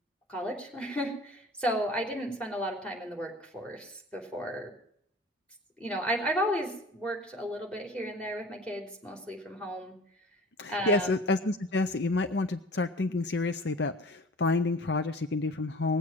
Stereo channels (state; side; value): normal; both; correlation 0.43